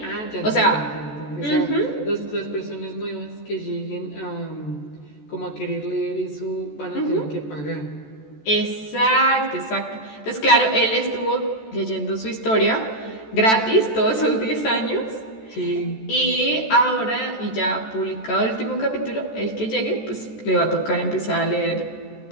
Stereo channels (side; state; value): right; late; 14 ms